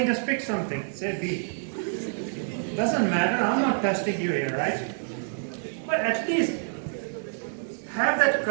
just pick something. Say B. Doesn't matter, I'm not testing you here, right? But at least have that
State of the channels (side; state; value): left; silent; digital silence